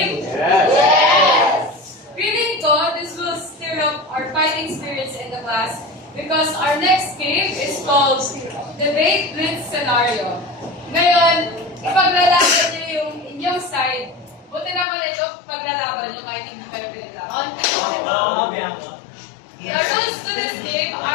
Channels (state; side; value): drops out; right; at 14.9 s